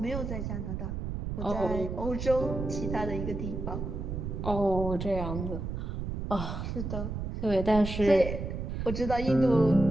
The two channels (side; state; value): right; noise; rumble, 4 dB below the sound